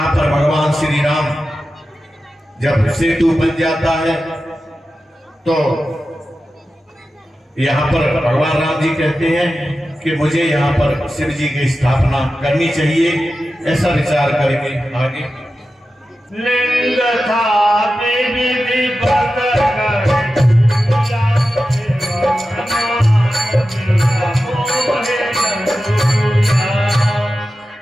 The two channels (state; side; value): normal; both; correlation 0.92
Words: पर भगवान श्री राम जब सेतु बन जाता है तो यहाँ पर भगवान राम जी कहते हैं कि मुझे यहाँ पर शिव जी की स्थापना करनी चाहिए। ऐसा विचार करके आगे लिंग था विधि पकड़